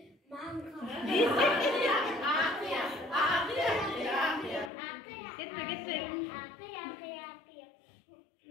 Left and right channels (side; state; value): right; drops out; at 4.7 s